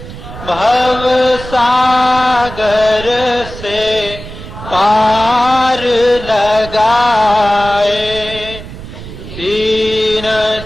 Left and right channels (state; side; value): noise; right; rumble, 13 dB below the sound